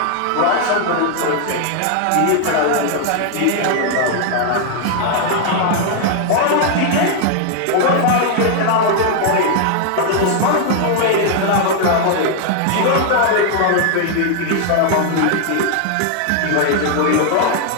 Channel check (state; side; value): different; both; correlation 0.00